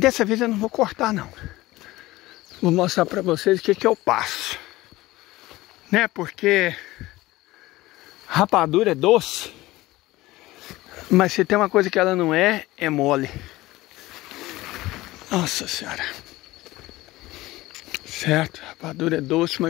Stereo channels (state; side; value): quieter; right; 18.3 dB